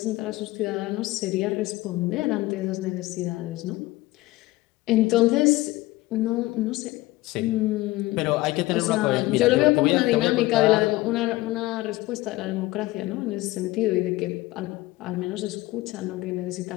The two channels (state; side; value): quieter; right; 19.2 dB